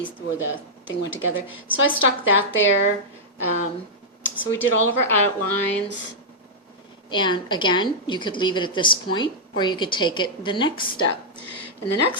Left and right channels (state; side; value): normal; both; correlation -0.07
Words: where the thing went together. So I stuck that there. So we did all of our outlines. And again, you could leave it at this point, or you could take it the next step. And the